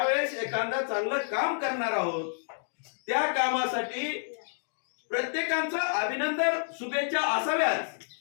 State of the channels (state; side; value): silent; right; digital silence